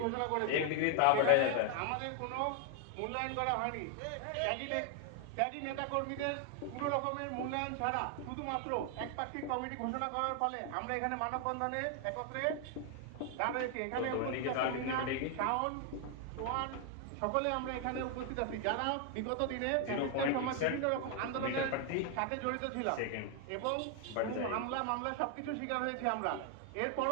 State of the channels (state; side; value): different; both; correlation 0.00